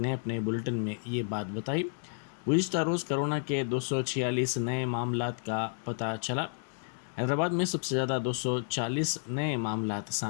اپنے بلیٹن میں یہ بات بتائی. گزشتہ روز کرونا کے 246 نئے معاملات کا پتہ چلا. حیدرآباد میں سب سے زیادہ 240 نئے معاملات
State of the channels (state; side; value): silent; right; 57 dB below the other